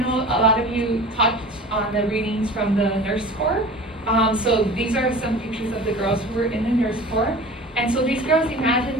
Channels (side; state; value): both; normal; correlation 0.39